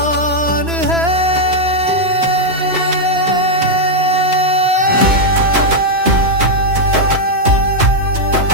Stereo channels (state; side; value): late; left; 3.0 ms